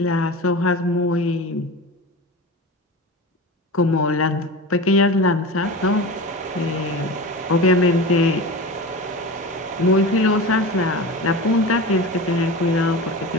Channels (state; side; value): normal; both; correlation 0.30